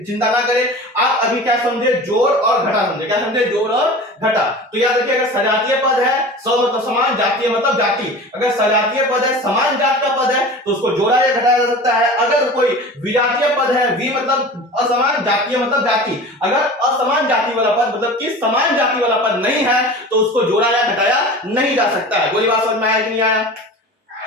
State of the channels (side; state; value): both; normal; correlation 0.36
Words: चिंता ना करें। आप अभी क्या समझे, जोड़ और घटा समझे, क्या समझे, जोड़ और घटा। तो याद रखिए अगर सजातीय पद है, सौ मतलब समान, जातीय मतलब जाति, अगर सजातीय पद है, समान जात का पद है तो उसको जोड़ा या घटाया जा सकता है। अगर कोई विजातीय पद है, वि मतलब असमान, जातीय मतलब जाति, अगर असमान जाति वाला पद मतलब कि समान जाति वाला पद नहीं है तो उसको जोड़ा या घटाया नहीं जा सकता है। बोली बात समझ में आया कि नहीं आया,